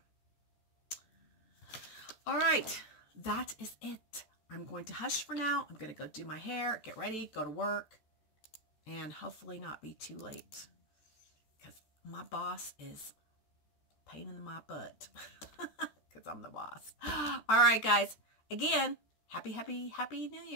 All right, that is it. I'm going to hush for now. I'm going to go do my hair, get ready, go to work, and hopefully not be too late. Because my boss is a pain in my butt. Because I'm the boss. All right, guys. Again, Happy New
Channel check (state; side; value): late; right; 14 ms